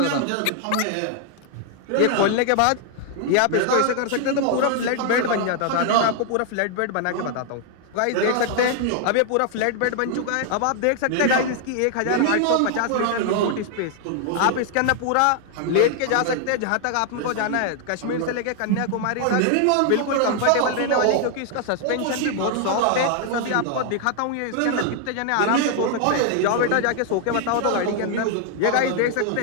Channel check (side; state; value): both; different; correlation 0.00